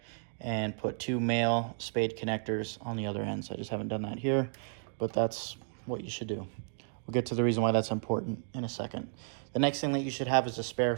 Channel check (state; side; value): silent; left; 56 dB below the other